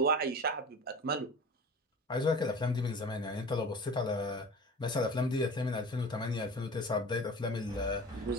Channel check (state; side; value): normal; both; correlation 0.37